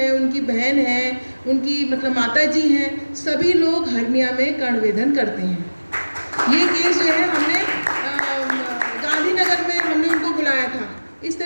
उनकी बहन है, उनकी मतलब माता जी हैं, सभी लोग हर्निया में कर्णवेधन करते हैं। ये केस जो है हमने गांधीनगर में हमने उनको बुलाया था। इस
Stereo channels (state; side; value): inverted; both; correlation -1.00